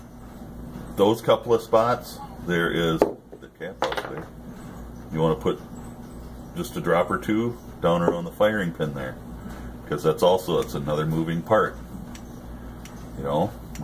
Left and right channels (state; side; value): identical; both; correlation 1.00